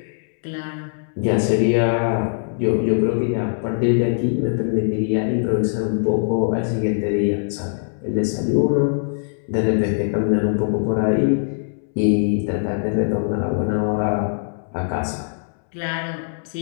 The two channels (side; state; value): right; silent; 65 dB below the other